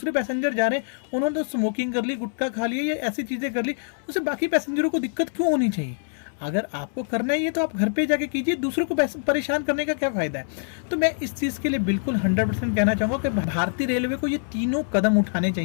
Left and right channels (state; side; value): silent; right; 62 dB below the other